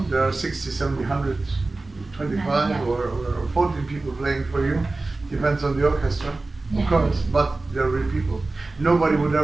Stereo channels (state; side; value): quieter; left; 3.3 dB